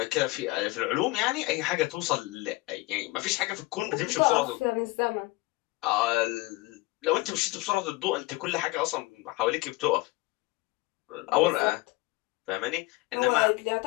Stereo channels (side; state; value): right; quieter; 21.4 dB